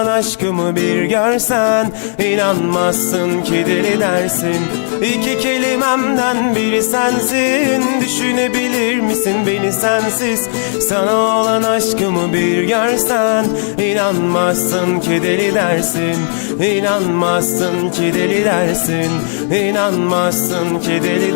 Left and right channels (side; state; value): right; silent; digital silence